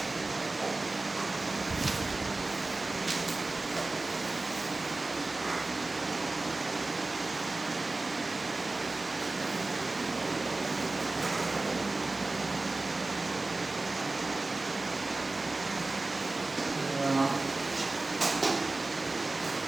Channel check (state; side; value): quieter; left; 3.2 dB